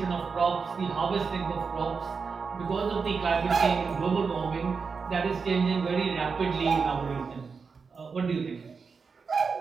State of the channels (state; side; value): quieter; left; 5.2 dB